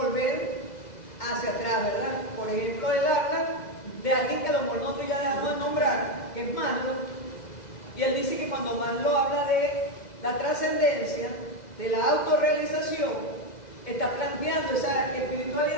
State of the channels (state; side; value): late; right; 2.0 ms